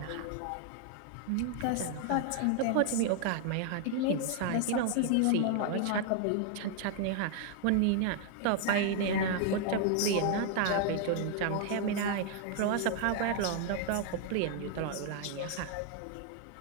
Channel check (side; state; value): both; different; correlation 0.00